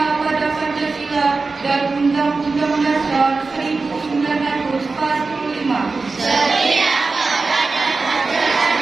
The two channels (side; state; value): left; quieter; 4.0 dB